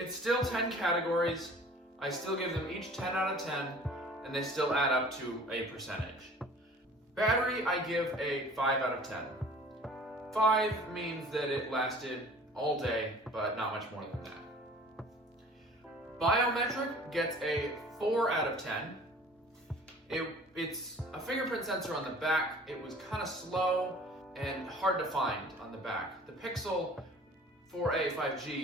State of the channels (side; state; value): both; normal; correlation 0.47